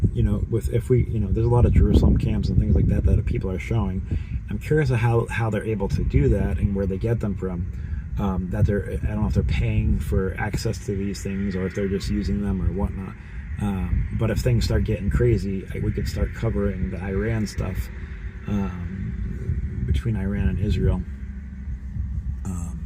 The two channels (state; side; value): identical; both; correlation 1.00